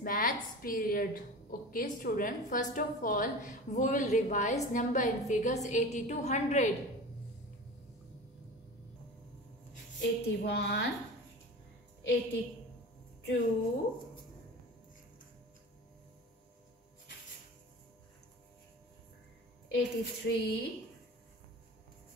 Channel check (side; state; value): both; normal; correlation 0.34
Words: Maths period. Okay, student. First of all, we will revise number and figures 80 to 100. 81, 82, 83,